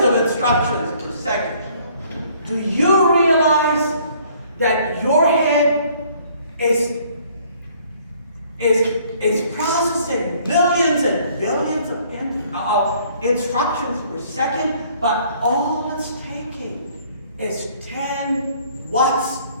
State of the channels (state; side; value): inverted; both; correlation -0.60